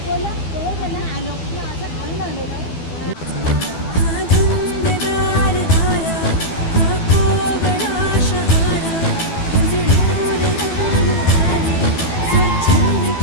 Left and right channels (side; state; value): right; late; 12 ms